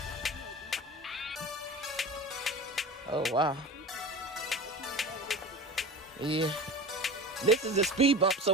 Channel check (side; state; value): both; normal; correlation 0.33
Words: Oh, wow. Yeah. This is a speed bump, so